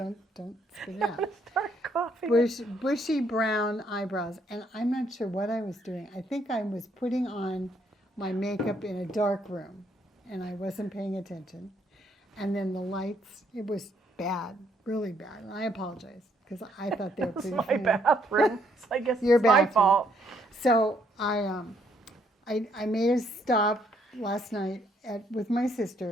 spit it out. Start coughing. Bushy brown eyebrows. And I'm not sure what I was doing. I think I was putting on my makeup in a dark room, and I wasn't paying attention. And then the lights, it was bad, really bad. And I apologize because I thought they were It's pretty my funny. bathroom. So I guess Your it's my bathroom. fault. So I made a stop last night with my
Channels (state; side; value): normal; both; correlation 0.70